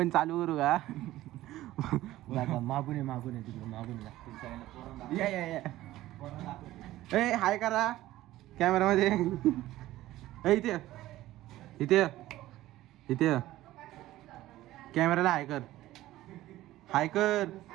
चालू करू का? मागून आहे तिकडे मागून लागते. ए हाय करा कॅमेरामध्ये. इथे इथे इथे कॅमेराला हाय कर. हाय कर.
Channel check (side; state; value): left; quieter; 15.6 dB